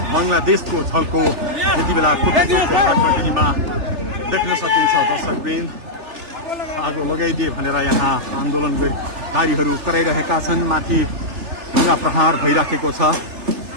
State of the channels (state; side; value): late; left; 3.3 ms